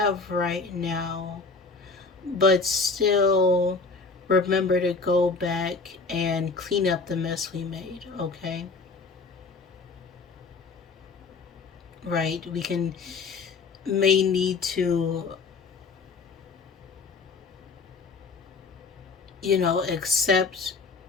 right now, but still remember to go back and clean up the mess we made, okay? Right? May need to, accept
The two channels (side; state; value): right; quieter; 4.3 dB